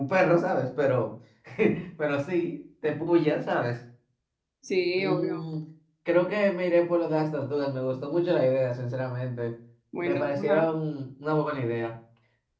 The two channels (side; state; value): both; identical; correlation 1.00